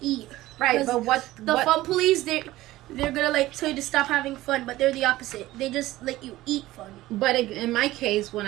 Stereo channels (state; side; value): quieter; left; 16.7 dB